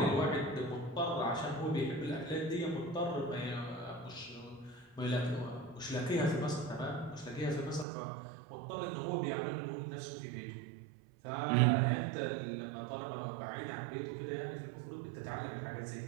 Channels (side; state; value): left; drops out; at 7.9 s